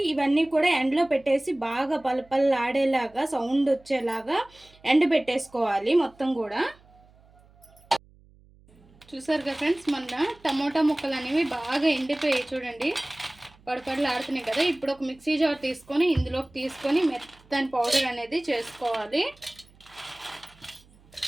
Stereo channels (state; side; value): noise; right; hum, 28 dB below the sound